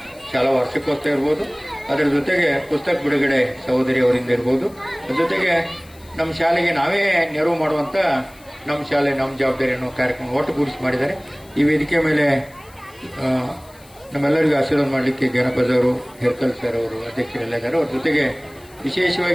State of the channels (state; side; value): noise; left; hiss, 26 dB below the sound